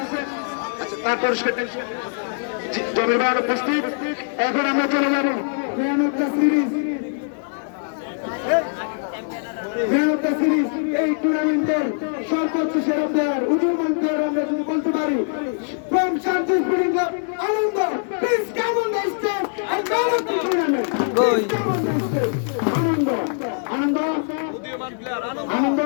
তার পুরস্কার জমির ভাই উপস্থিত। এখন আমরা চলে যাবো ম্যান অফ দ্য সিরিজ। এই টুর্নামেন্টের সর্বোচ্চ সেরা প্লেয়ার, উদীয়মান প্লেয়ার আমরা যদি বলতে পারি, from Shanti spring club Anand, please come on the stage and man of the tournament. Anand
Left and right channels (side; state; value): right; silent; 64 dB below the other